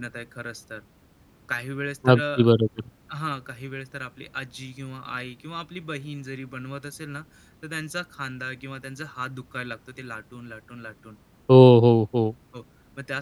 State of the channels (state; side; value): identical; both; correlation 1.00